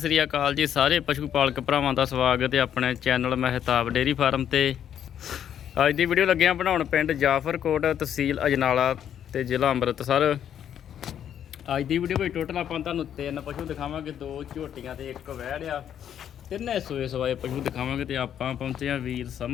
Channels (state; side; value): quieter; right; 9.5 dB